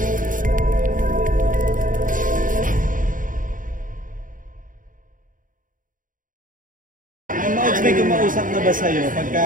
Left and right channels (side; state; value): left; late; 0.39 ms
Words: May kumausap na ba sa'yo